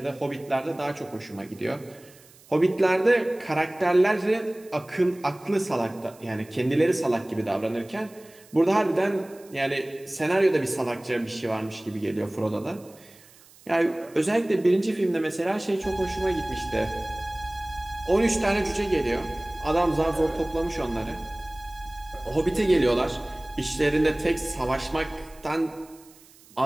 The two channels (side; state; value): right; noise; hiss, 25 dB below the sound